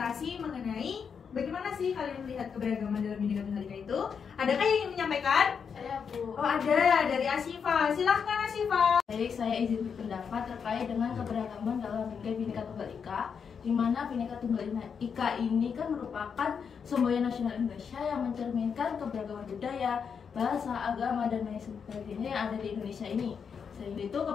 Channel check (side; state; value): right; quieter; 6.5 dB